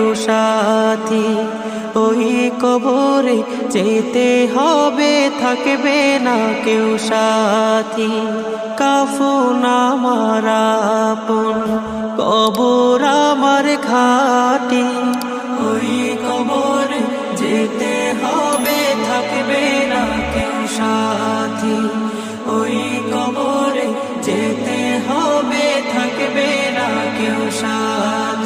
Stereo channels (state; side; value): identical; both; correlation 1.00